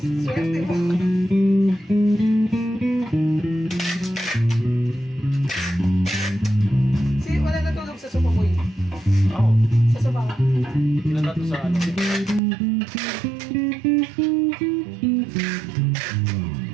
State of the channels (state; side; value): drops out; left; at 12.4 s